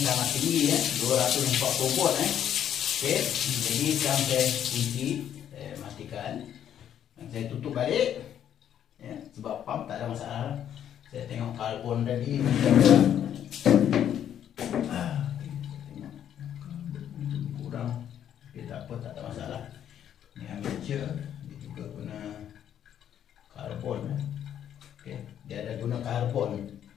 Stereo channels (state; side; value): quieter; right; 9.9 dB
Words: sangat tinggi 240 volt Okey, jadi sekarang saya kunci, saya matikan dan saya tutup balik sebab pump tak ada masalah. Saya tengok karbon tadi kurang, tak apa, tak ada masalah. Ini amateur, dia juga guna karbon Okey, dia ada guna karbon